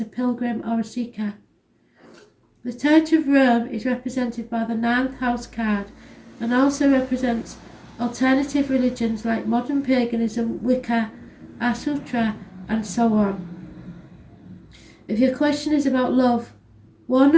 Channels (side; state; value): both; identical; correlation 1.00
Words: a pilgrim or a seeker. The Church of Rome is represented by the 9th house card and also represents alternative religions like modern paganism, Wicca, Asutra and so on. If your question is about love,